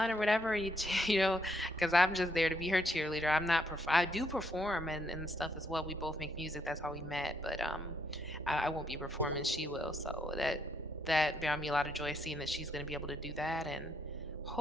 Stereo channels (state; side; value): normal; both; correlation 0.74